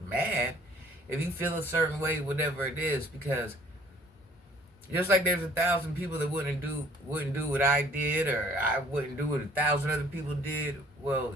mad if you feel a certain way, whatever it is, because just like there's 1,000 people that wouldn't do what I did, or I wouldn't do what 1,000 other people did.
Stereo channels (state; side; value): normal; both; correlation 0.56